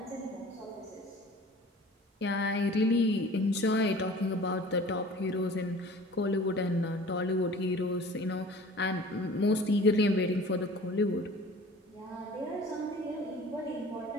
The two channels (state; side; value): normal; both; correlation 0.45